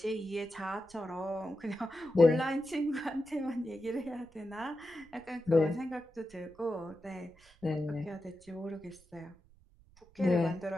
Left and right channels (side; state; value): right; noise; rumble, 26 dB below the sound